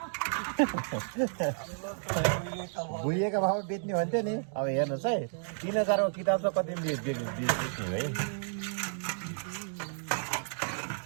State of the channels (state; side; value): silent; left; digital silence